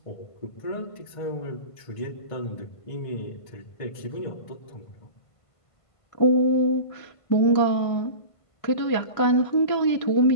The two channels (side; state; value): right; late; 1.5 ms